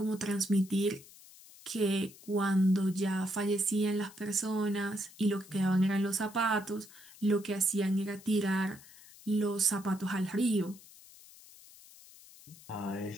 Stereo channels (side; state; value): left; noise; hiss, 21 dB below the sound